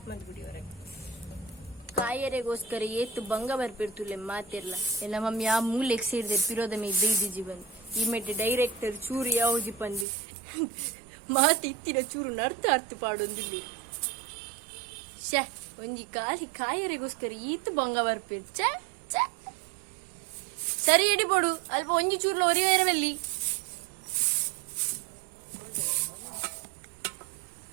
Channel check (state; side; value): drops out; left; at 10.1 s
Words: ಮಾಡ್ಬಿಡಿ ಹೊರಗೆ ಕಾಯರೆಗೋಸ್ಕರ ಏತು ಭಂಗ ಬರ್ಪಿರ್ತುಲೆ ಮಾತಿರ್ಲ ಎಲ್ಲ ಮಮ್ಮಿ ಆ ಮೂಲೆಗೆ ಸೇರಿದೆ ಪಿರೋದ ಮೇ ಬೈದಿ ಜೀವನ್ ಈ ಮೆಟ್ಟ ಡೈರೆಕ್ಟರ್ ಚೂರು ಯಾವ್ದು ಪಂದಿ ಮಾತು ಇತ್ತಿನ ಚೂರು ಅರ್ಥ ಪಾಡೊಂದಿಲ್ಲಿ ಛೆ ಒಂಜಿ ಕಾಲಿ ಕಾಯರೆಗೋಸ್ಕರ ಈತು ಭಂಗ ಬರ್ಪಿರ್ ಛೆ ಛೆ ಸರಿ ಎಡಿ ಪೋಡು ಅಲ್ಪ ಒಂಜಿ ಚೂರ್ಲ ಒರಿವೇರವಲ್ಲಿ